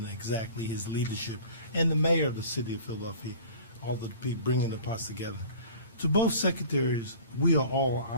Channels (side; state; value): both; inverted; correlation -0.43